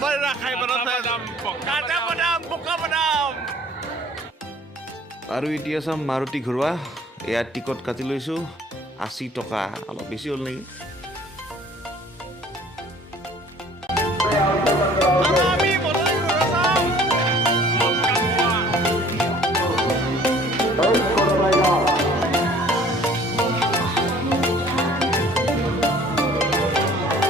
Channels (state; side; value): normal; both; correlation 0.52